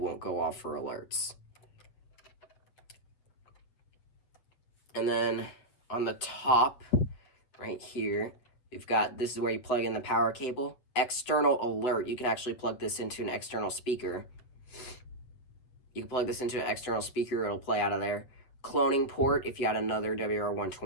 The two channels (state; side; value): late; right; 8.2 ms